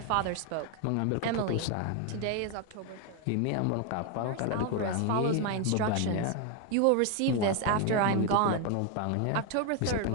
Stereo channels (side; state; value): both; different; correlation 0.01